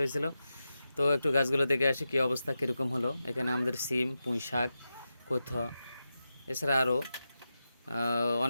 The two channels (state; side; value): inverted; both; correlation -0.91